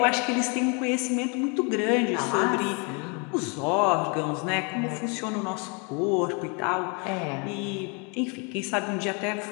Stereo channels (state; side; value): quieter; right; 33.6 dB